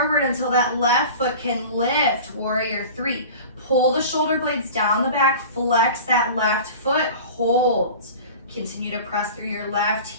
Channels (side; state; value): both; inverted; correlation -0.37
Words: until that left foot can lift, warrior 3. Pull the shoulder blades down the back, flex that left foot, hold. Continue to press through your left